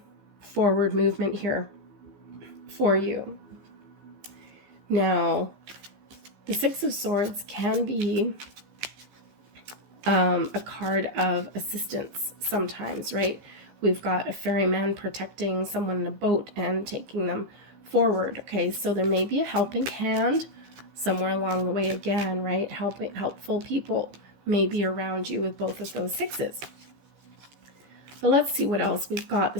forward movement here for you. Now, the Six of Swords can be a card of assistance sometimes, right? We've got a ferryman protecting someone in a boat and taking them forward, okay? So there may be a helping hand somewhere along the way again, right? Helpful people may be around you with both of those sixes. But let's see what else we've got. The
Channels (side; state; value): left; late; 15 ms